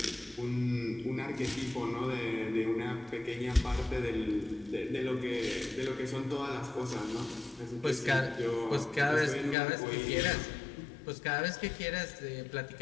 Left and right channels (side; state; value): right; drops out; at 9.6 s